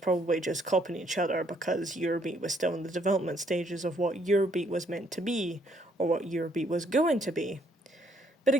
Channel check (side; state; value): both; normal; correlation 0.68